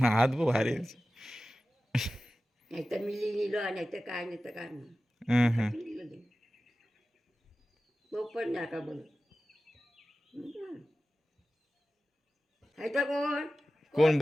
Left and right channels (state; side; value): normal; both; correlation 0.95